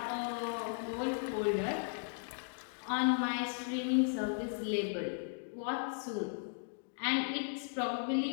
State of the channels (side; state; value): right; silent; digital silence